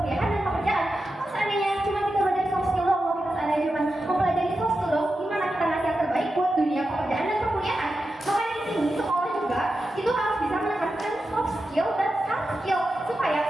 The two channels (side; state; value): both; normal; correlation 0.90